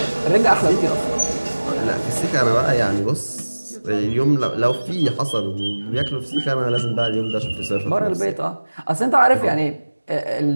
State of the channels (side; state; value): both; inverted; correlation -1.00